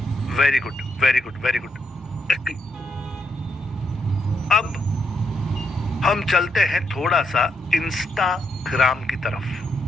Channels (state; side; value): normal; both; correlation 0.78